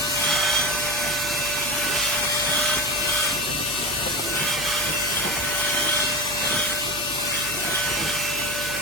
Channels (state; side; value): noise; right; hum, 13 dB below the sound